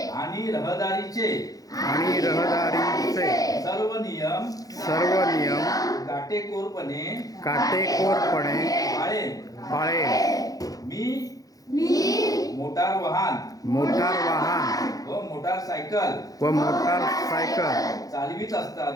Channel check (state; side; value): late; right; 0.17 ms